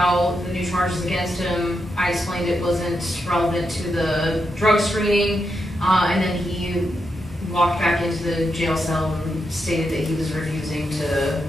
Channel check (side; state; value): both; normal; correlation 0.84